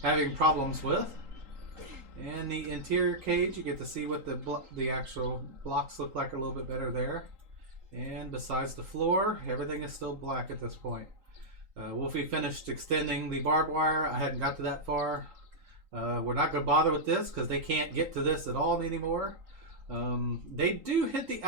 having problems with. And the interior cage, you get to see what the actual blocks look like a little bit better there. And besides the floor, everything is still black at this point. Wolfie finished extending the barbed wire. I hadn't got to that far. We're not going to bother with this because they can't get to this at all anymore. They do hit the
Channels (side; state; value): left; late; 3.8 ms